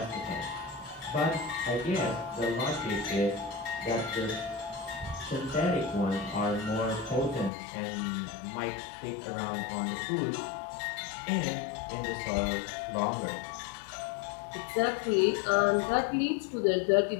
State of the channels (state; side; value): drops out; right; at 7.5 s